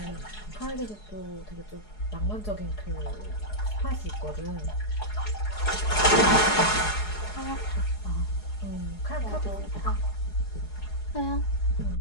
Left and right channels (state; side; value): late; right; 4.8 ms